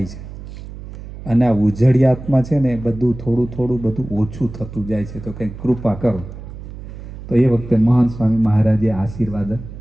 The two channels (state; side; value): noise; right; hum, 13 dB below the sound